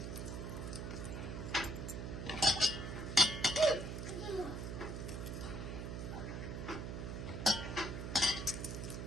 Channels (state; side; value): noise; right; hum, 5 dB below the sound